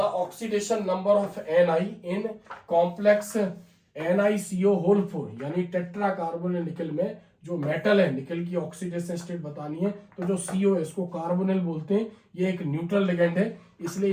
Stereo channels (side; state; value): both; identical; correlation 1.00